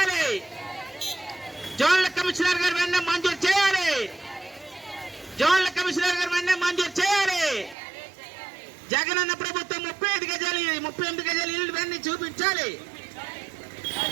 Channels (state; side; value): drops out; left; at 7.8 s